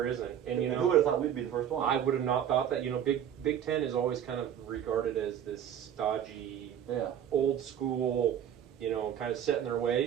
isn't. And who would have thought we'd be the first one? I would have not thought that. Big Ten is always kind of regarded as this stodgy, old school, kind of set in their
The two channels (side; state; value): left; quieter; 9.6 dB